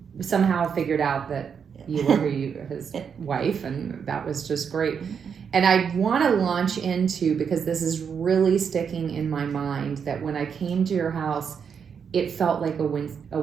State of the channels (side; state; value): left; quieter; 6.9 dB